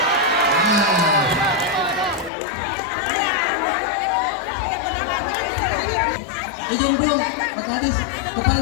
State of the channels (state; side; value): drops out; right; at 2.3 s